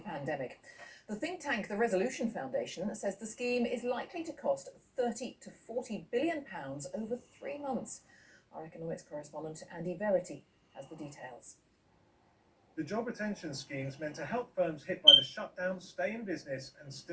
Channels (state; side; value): identical; both; correlation 1.00